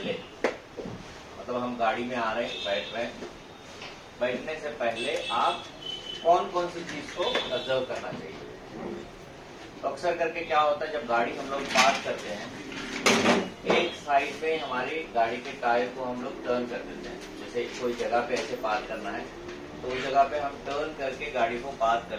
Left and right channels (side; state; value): both; identical; correlation 1.00